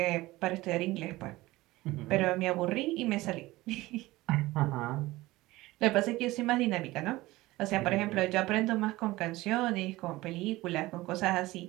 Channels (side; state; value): left; quieter; 19.0 dB